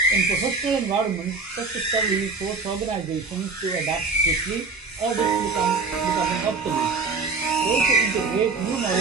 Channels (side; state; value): left; quieter; 4.2 dB